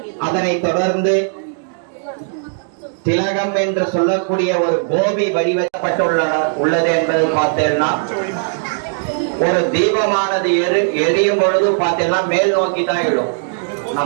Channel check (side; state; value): left; silent; digital silence